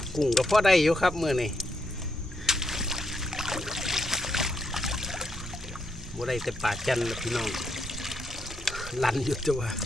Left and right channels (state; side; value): normal; both; correlation 0.78